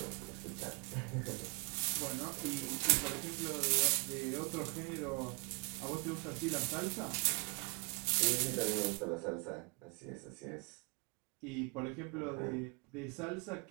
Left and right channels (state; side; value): quieter; left; 31.9 dB